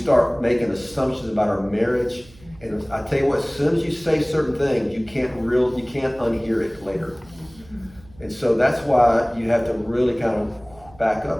making assumptions about our marriage. And I tell you what, as soon as you say certain things, you can't unhear it later. And so that's why you have to really kind of back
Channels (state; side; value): noise; right; hum, 24 dB below the sound